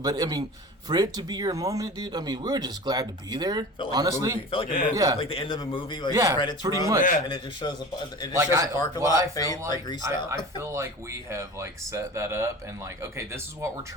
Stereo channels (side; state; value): both; normal; correlation 0.36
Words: I mean... For it to be your moment, dude, I mean, we were just glad to be there. Honestly, felt like a movie, like the end of a movie, like the credits pretty run, much, and it just shows a parking lot fade, like greased out. I feel like we have like set that up and like, okay, this is what we're